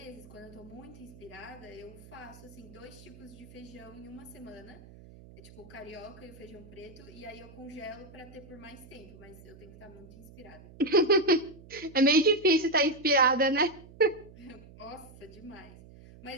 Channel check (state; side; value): noise; right; hum, 20 dB below the sound